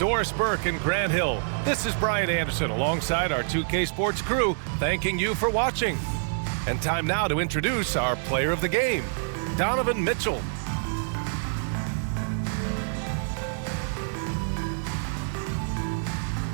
Burke, and Grant Hill, this is Brian Anderson alongside our 2K Sports crew, thanking you for watching. And time now to introduce our player of the game, Donovan Mitchell.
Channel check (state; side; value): silent; left; 59 dB below the other